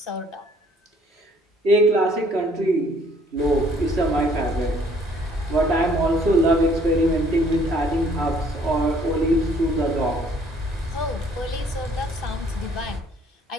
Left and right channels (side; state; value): both; normal; correlation 0.61